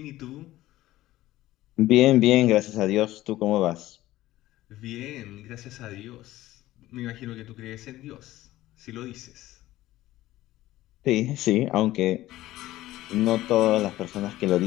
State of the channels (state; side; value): quieter; right; 15.9 dB